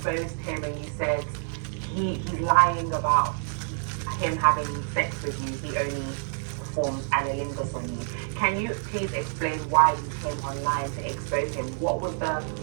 him and you said he's lying about him having sex with you, he only performs analingus on you. Can you please explain why you came online to expose him? What was the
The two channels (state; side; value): silent; left; 60 dB below the other